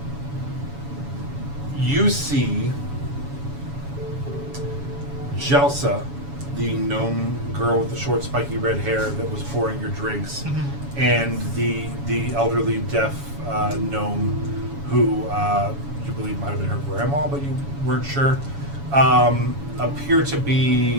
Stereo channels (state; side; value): late; left; 7.1 ms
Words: You see Jelsa, the gnome girl with the short spiky red hair that was pouring your drinks, and the elderly deaf gnome who you believe might have been her grandma, but you weren't sure, appear to